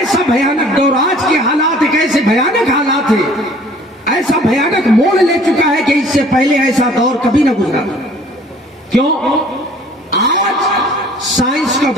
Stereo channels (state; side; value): normal; both; correlation 0.53